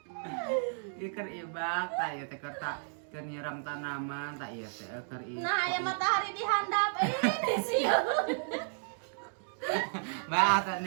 Ieu keur ibak tah ieu teh keur nyiram tanaman tah ieu teh keur ibak. Nah, aya matahari di handap ini sieun. Bae teh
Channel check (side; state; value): left; silent; digital silence